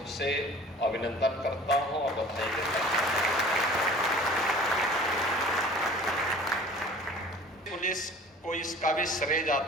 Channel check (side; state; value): both; normal; correlation 0.46